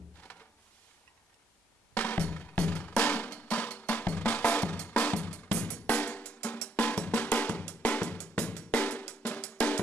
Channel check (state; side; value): normal; both; correlation 0.71